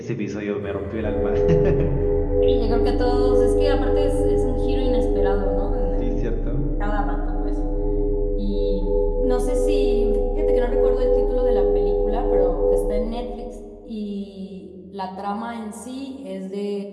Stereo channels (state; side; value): identical; both; correlation 1.00